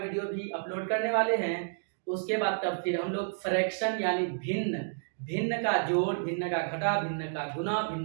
भी अपलोड करने वाले हैं। उसके बाद तब फिर हम लोग फ्रैक्शन यानी भिन्न, भिन्न का जोड़, भिन्न का घटा, भिन्न का गुना,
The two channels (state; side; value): silent; left; digital silence